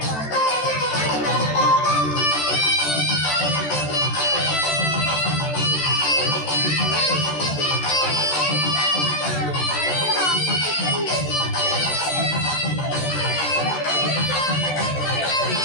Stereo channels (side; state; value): right; late; 13 ms